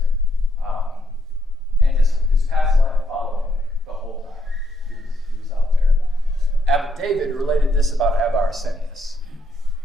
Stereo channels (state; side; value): normal; both; correlation 0.74